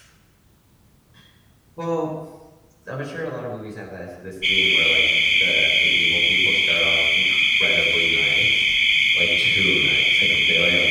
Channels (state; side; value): identical; both; correlation 1.00